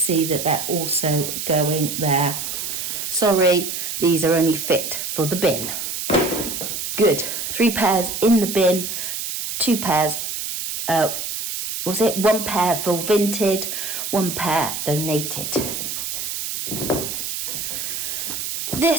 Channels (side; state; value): right; noise; hiss, 4 dB below the sound